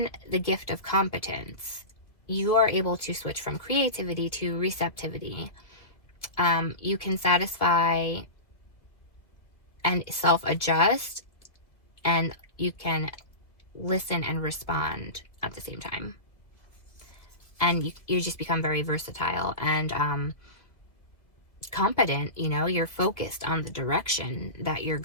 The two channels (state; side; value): late; right; 2.3 ms